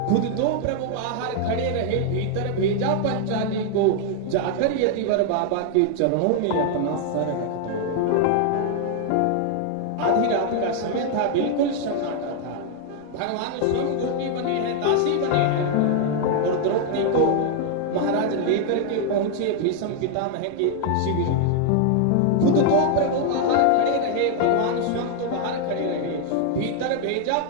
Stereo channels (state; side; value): different; both; correlation 0.00